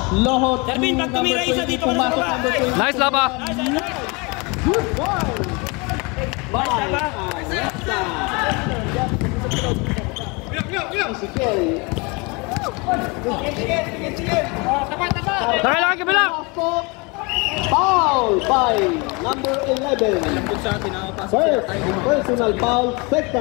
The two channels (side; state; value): right; quieter; 28.7 dB